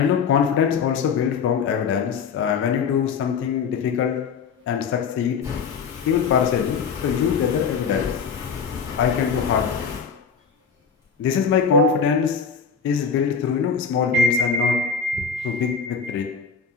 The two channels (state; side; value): quieter; right; 6.0 dB